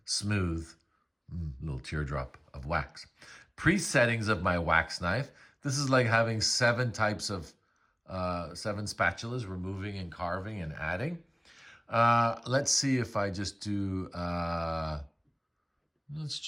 smooth, little teardrop of wax. Pre-settings of my wax knife. This is like having 7 types of, 7 spatulas, removing and carving and adding. Let's see if I just do, let's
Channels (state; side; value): identical; both; correlation 1.00